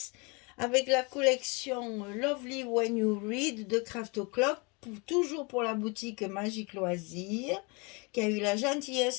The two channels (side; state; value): right; quieter; 30.0 dB